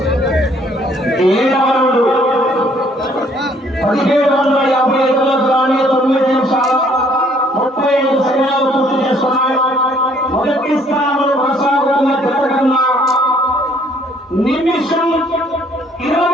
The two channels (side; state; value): both; normal; correlation 0.62